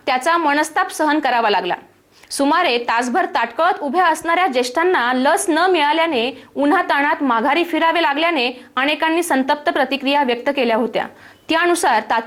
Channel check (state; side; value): identical; both; correlation 1.00